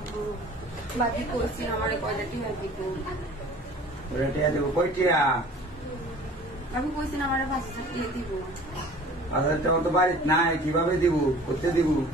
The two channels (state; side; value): normal; both; correlation 0.46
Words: ভাবি কইছি আমার কয়টা টিয়া দিব টিয়া দেবো কই টিয়া ভাবি কইছি আমার 5000 টিয়া দিব 5000 টাকা তো বাড়িতে নাই কিভাবে দিব করতে দিব